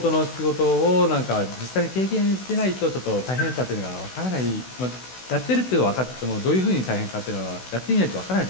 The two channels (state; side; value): late; right; 16 ms